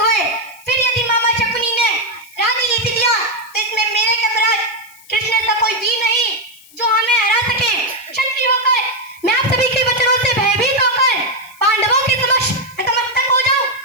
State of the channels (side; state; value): left; noise; hiss, 24 dB below the sound